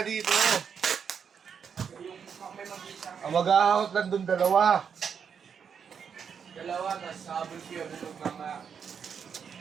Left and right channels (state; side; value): quieter; left; 7.0 dB